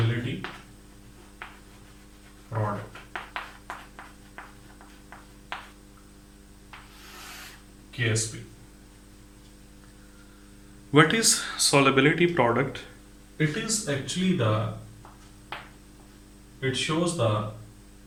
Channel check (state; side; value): identical; both; correlation 1.00